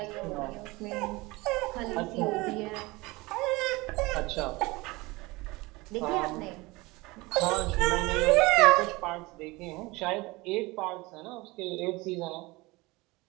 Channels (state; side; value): quieter; left; 22.7 dB